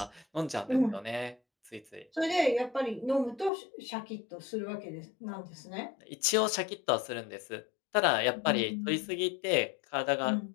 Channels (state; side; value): drops out; right; at 3.5 s